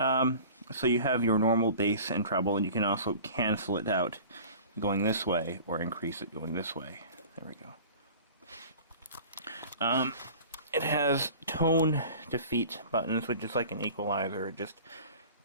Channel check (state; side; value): inverted; both; correlation -0.43